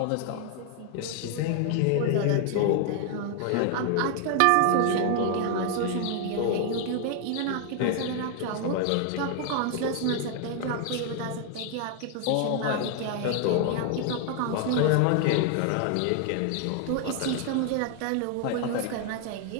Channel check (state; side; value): different; both; correlation 0.00